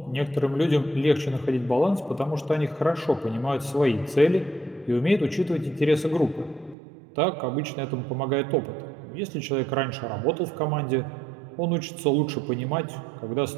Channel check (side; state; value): left; drops out; at 6.8 s